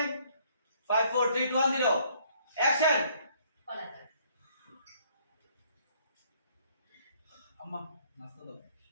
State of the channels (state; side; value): inverted; both; correlation -0.64